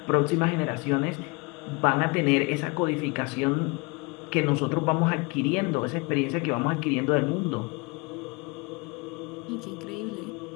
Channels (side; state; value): right; quieter; 28.3 dB